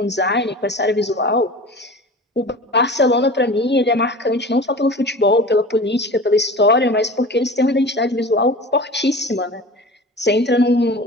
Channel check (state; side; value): normal; both; correlation 0.37